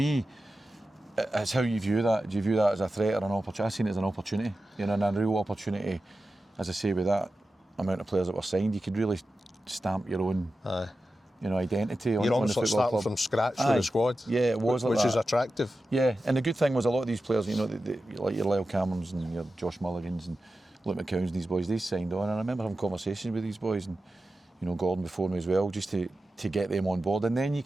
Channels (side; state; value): both; normal; correlation 0.93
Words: it's how you view that. Do you view that as a threat or an opportunity? I seen it as an opportunity. You know, and a real opportunity. As I say, with that amount of players that were signed, you could really stamp your own. You know, identity. You're almost like starting from scratch with the squad. Yeah, it was which like is attractive. Yeah, and the good thing was a lot of these players, you know, like your Lyle Camerons and your Josh Mulligans and Luke McCowns and these boys, they signed on. And I remember having conversations with these boys and, you know, Gordon before me as well, just to get them on board. And then you